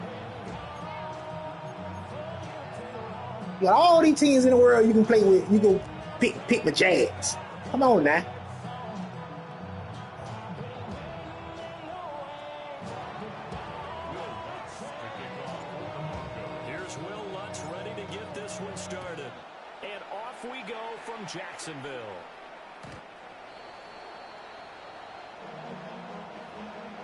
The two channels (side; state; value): both; identical; correlation 1.00